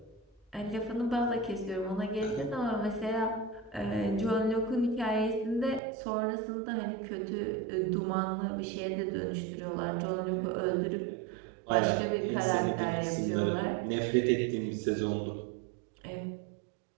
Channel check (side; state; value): left; drops out; at 5.8 s